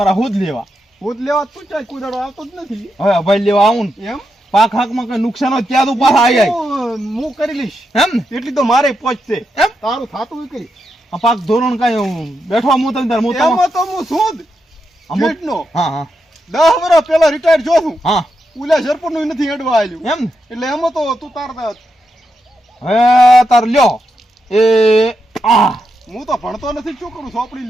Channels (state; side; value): normal; both; correlation 0.85